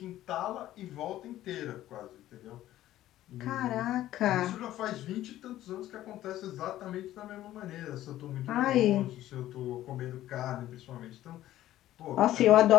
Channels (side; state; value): right; quieter; 13.9 dB